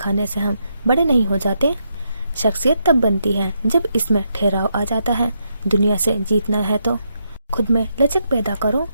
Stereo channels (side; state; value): both; inverted; correlation -0.80